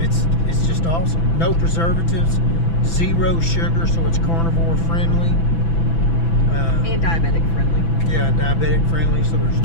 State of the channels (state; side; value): late; right; 6.0 ms